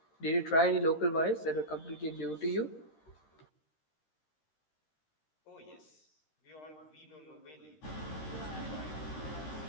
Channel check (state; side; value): late; right; 13 ms